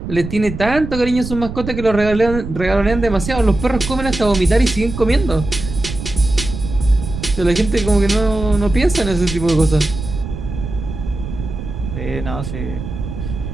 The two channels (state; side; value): noise; right; rumble, 8 dB below the sound